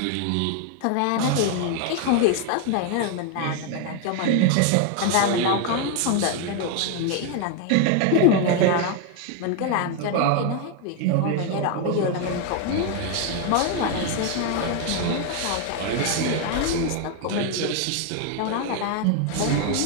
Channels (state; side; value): different; both; correlation 0.01